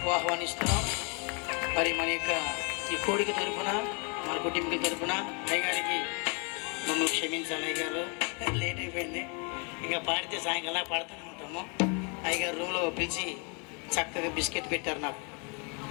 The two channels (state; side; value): quieter; right; 35.0 dB